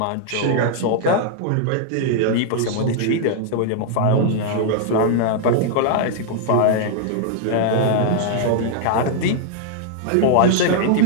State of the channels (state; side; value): different; both; correlation -0.01